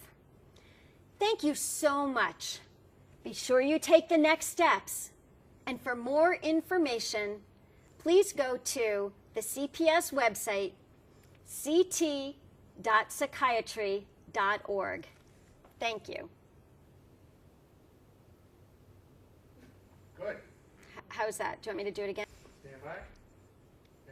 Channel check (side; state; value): both; identical; correlation 1.00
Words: Thank you so much. Be sure you take the next steps. And for more information, please go to the CPS website, ct.psychiatry.org. Thank you. Good. How's that? Do you want me to do it again? Stand by.